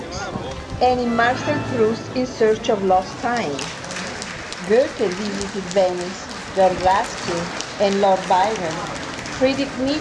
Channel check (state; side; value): identical; both; correlation 1.00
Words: and in Marcel Proust's In Search of Lost Time. Goethe visited Venice, John Ruskin and Lord Byron, Friedrich